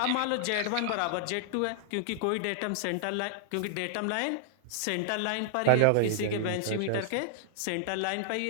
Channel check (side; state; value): both; different; correlation -0.01